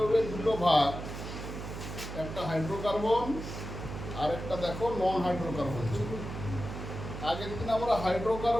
দুটো ভাগ, একটা হাইড্রোকার্বন আর একটা দেখো নন হাইড্রোকার্বন ছিল। আগের দিন আমরা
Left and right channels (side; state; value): right; noise; hum, 8 dB below the sound